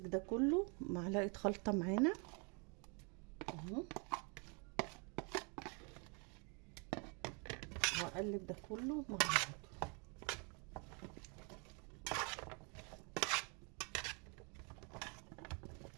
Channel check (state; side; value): quieter; left; 34.8 dB